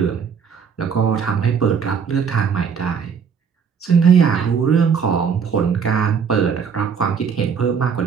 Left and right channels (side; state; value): left; quieter; 6.6 dB